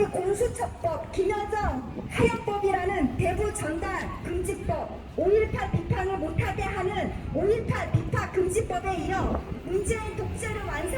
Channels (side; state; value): both; identical; correlation 1.00